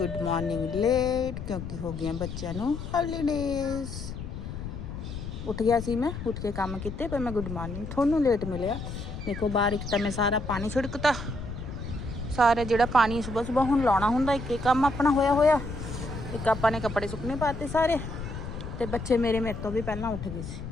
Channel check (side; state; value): left; noise; rumble, 8 dB below the sound